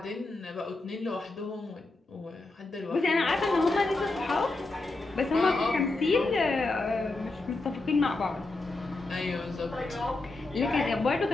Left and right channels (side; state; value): right; quieter; 3.2 dB